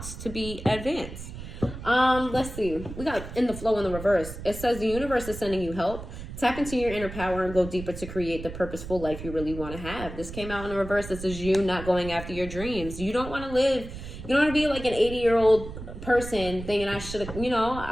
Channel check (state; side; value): noise; right; rumble, 10 dB below the sound